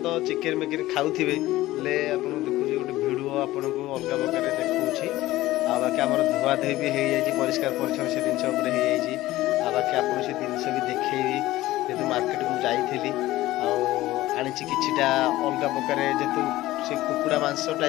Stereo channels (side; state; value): right; quieter; 16.6 dB